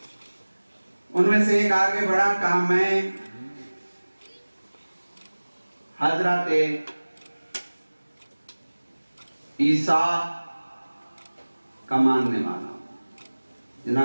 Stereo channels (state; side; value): inverted; both; correlation -1.00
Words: उनमें से एक आगे बढ़ा, कहा मैं हजरत ईसा का मानने वाला हूं।